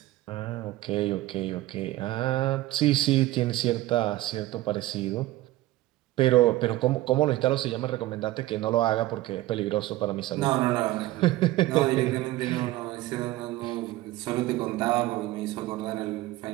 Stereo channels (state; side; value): quieter; left; 17.0 dB